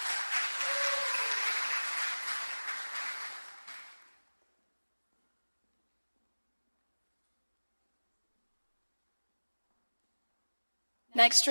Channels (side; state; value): both; inverted; correlation -1.00